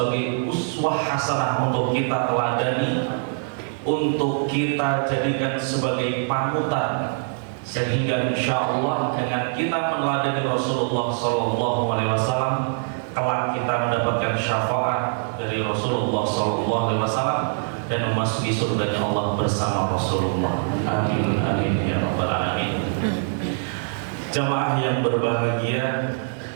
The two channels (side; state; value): left; silent; 63 dB below the other